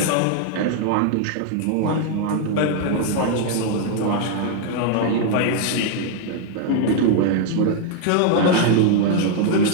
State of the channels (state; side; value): different; both; correlation 0.00